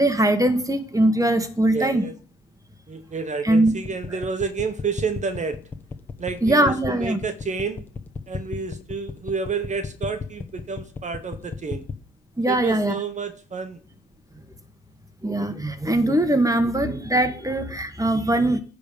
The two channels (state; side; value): normal; both; correlation 0.66